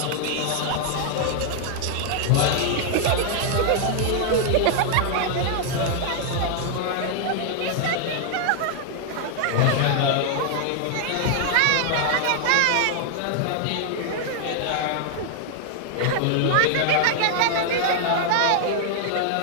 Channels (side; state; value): both; different; correlation 0.00